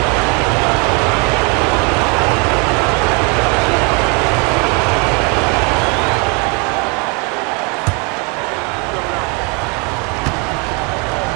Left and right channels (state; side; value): quieter; left; 32.3 dB